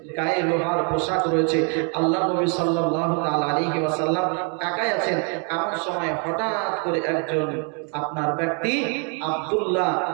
গায়ে লোহার পোশাক রয়েছে। আল্লাহ নবী সাল্লাল্লাহু তাআলা আলাইহি ওয়াসাল্লাম একাই আছেন। এমন সময় হঠাৎ করে একজন আপনার ব্যক্তি আব্দুল্লাহ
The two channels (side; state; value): left; quieter; 38.2 dB